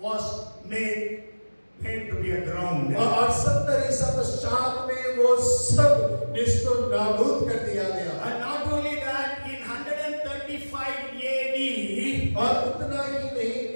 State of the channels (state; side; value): inverted; both; correlation -1.00